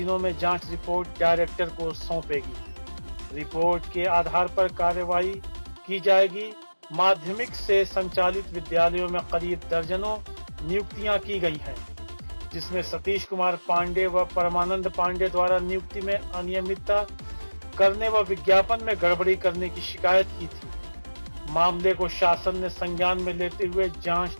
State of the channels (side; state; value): both; inverted; correlation -1.00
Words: में जांच रिपोर्ट डायरेक्टर को सौंपेगी। रिपोर्ट के आधार पर कार्यवाही की जाएगी। माध्यमिक से संचालित विद्यालयों में करीब दर्जनों नियुक्तियां की गई हैं, जिसमें सतीश कुमार पांडे व परमानंद पांडे द्वारा नियुक्ति में अनियमितता करने व विज्ञापन में गड़बड़ी करने की शिकायत की थी। मामले को शासन ने संज्ञान में लेते हुए जांच